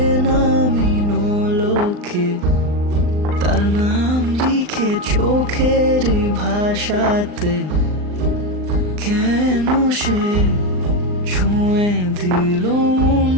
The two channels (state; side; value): late; left; 39 ms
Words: নোলকে তার নাম লিখে চোখের ভাষাতে কেন সে ছুঁয়ে দিল মন